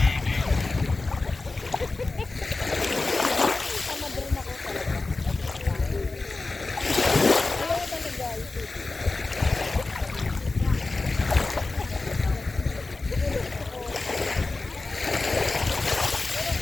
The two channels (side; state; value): right; quieter; 3.5 dB